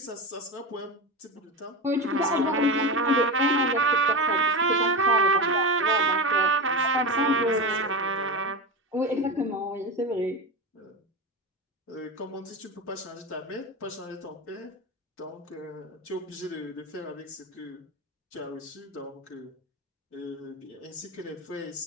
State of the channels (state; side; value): normal; both; correlation 0.21